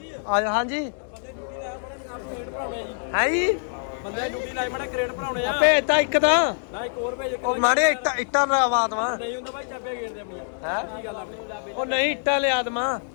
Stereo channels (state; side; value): silent; right; digital silence